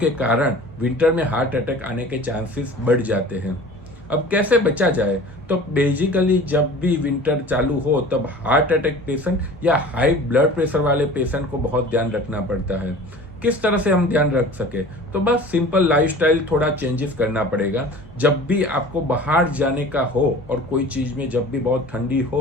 कारण विंटर में हार्ट अटैक आने के चांसेस बढ़ जाते हैं। अब कैसे बचा जाए? तो बेसिकली जब भी विंटर चालू हो तब हार्ट अटैक पेशेंट या हाई ब्लड प्रेशर वाले पेशेंट को बहुत ध्यान रखना पड़ता है। किस तरह से हम ध्यान रख सके? तो बस सिंपल लाइफस्टाइल थोड़ा चेंजेस करना पड़ेगा। जब भी आपको बाहर जाने का हो और कोई चीज़ में जब भी बहुत ठंडी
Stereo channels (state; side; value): normal; both; correlation 0.42